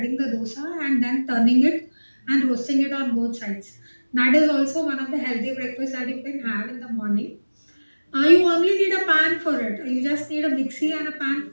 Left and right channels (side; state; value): both; inverted; correlation -1.00